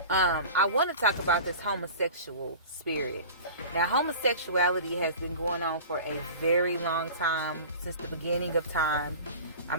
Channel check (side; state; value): both; inverted; correlation -0.37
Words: I want to talk about this homosexual spirit. Now, homosexuality has been going on for a very long time, since the beginning of time. I